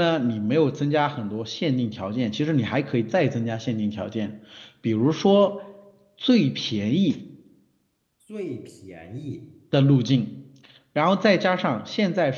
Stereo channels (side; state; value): both; identical; correlation 1.00